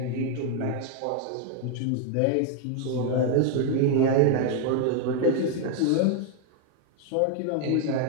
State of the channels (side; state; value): both; different; correlation 0.01